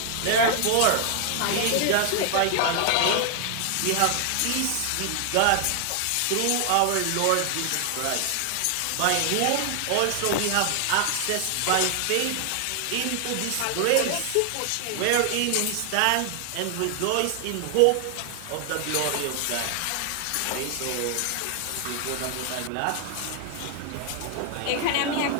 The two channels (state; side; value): different; both; correlation 0.00